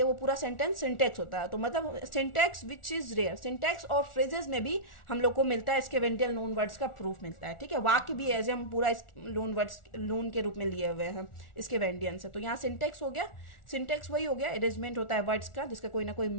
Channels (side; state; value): right; late; 1.4 ms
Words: वो पूरा सेंटेंस सिंटेक्स होता है। तो मतलब syntax which is rare, syntax और फ्रेजेस में भी हम लोग को मिलता है स्केवेंडियल लोन वर्ड्स का प्रूफ मिलता है। ठीक है, वाक्य भी एज हम पूरा लोन वर्ड्स लोन के रूप में लिए हुए हैं स्केवेंडियन से। तो यहाँ सिंटेक्स हो गया, सिंटेक्स वही हो गया, अरेंजमेंट होता है वर्ड्स का जिसका कोई ना कोई